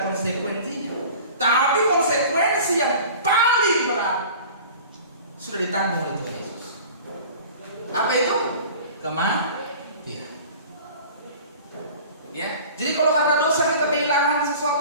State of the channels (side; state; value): both; inverted; correlation -0.42